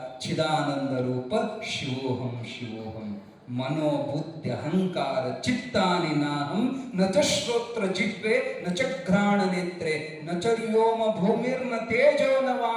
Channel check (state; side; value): identical; both; correlation 1.00